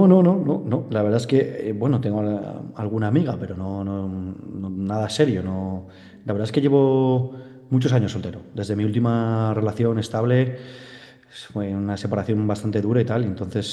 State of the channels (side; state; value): both; identical; correlation 1.00